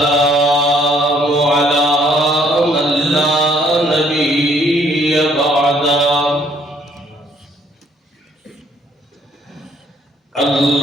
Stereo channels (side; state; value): both; normal; correlation 0.65